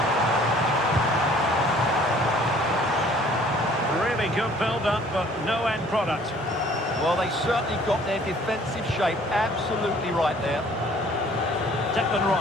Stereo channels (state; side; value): normal; both; correlation 0.55